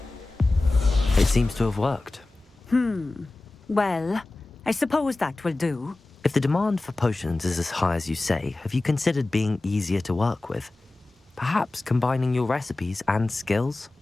It seems to have worked. Well, I suppose that will do. If the demand for potions is as high as you say, have you considered being easier to work with? Perhaps combining your recipes and skills?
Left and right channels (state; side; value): quieter; right; 3.0 dB